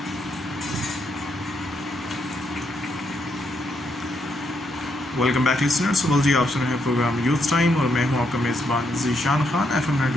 Welcome back listeners. सुबह जी, आप सुन रहे हैं प्रोग्राम यूथ टाइम और मैं हूं आपका मेज़बान ज़ीशान खान FM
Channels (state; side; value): normal; both; correlation 0.77